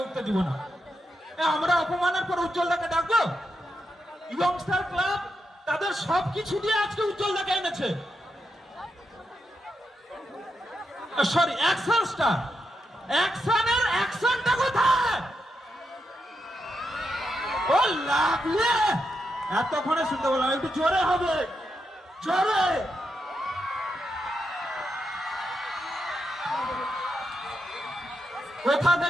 উঠতে দিব না। আমরা অপমানের পর উজ্জ্বলদাকে ডাকবো? ইয়ংস্টার ক্লাব তাদের সবকিছু দিয়ে আজকে উজ্জ্বলদাকে এনেছে। Sorry, action star. অ্যাকশনের অ্যাকশনটা কোথায়? ও লাগলে এতক্ষণে শুনতে বললাম, একটু জোরে হবে, জোরে। কোথা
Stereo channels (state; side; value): normal; both; correlation 0.84